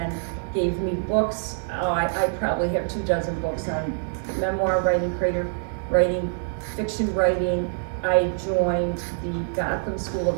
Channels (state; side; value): silent; left; digital silence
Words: gave me books. I probably have 24 books on memoir writing, creative writing, fiction writing. I joined the Gotham School